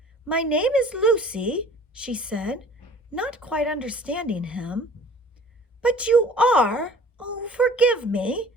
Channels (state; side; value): normal; both; correlation 0.48